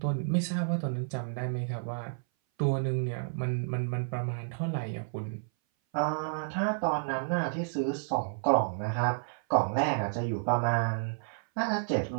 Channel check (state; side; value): silent; left; 57 dB below the other